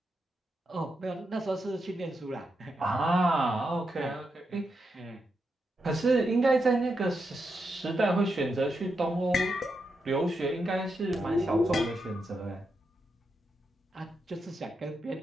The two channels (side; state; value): both; normal; correlation 0.84